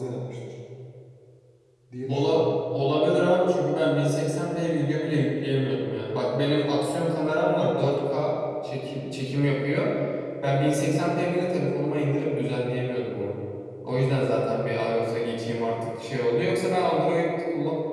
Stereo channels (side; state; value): both; identical; correlation 1.00